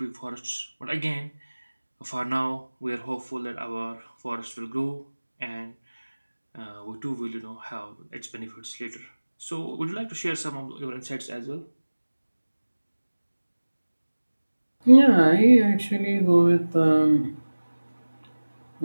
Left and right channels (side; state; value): both; inverted; correlation -1.00